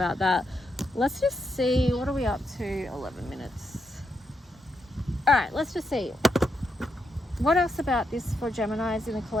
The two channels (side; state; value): both; normal; correlation 0.82